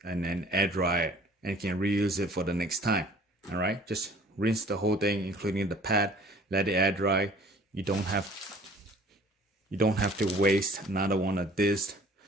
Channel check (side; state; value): both; normal; correlation 0.52